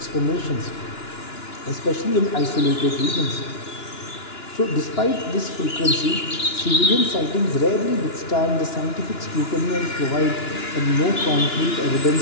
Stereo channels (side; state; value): right; late; 2.9 ms